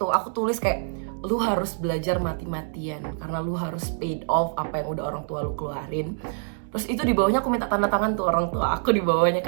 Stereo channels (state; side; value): silent; left; digital silence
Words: aku tulis kayak lu harus belajar mati-matian karena lu harus paid off apa yang udah orang tua lu keluarin. Terus itu di bawahnya aku minta tanda tangan tuh orang tua aku, di bawahnya